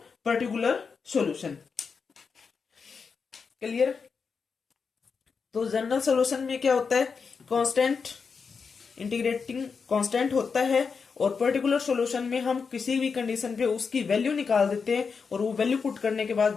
पर्टिकुलर सॉल्यूशन। क्लियर। तो जनरल सॉल्यूशन में क्या होता है, कांस्टेंट इंटीग्रेटिंग कांस्टेंट होता है, और पर्टिकुलर सॉल्यूशन में हम किसी भी कंडीशन पे उसकी वैल्यू निकाल देते हैं, और वो वैल्यू पुट करने के बाद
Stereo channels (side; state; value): right; quieter; 5.5 dB